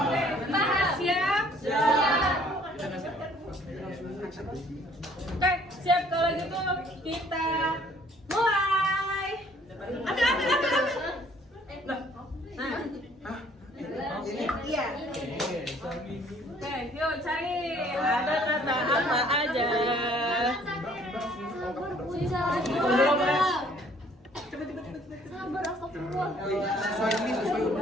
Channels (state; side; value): normal; both; correlation 0.59